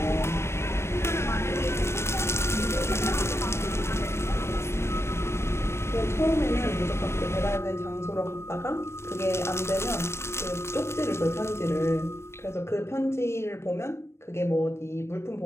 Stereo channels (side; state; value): right; late; 0.13 ms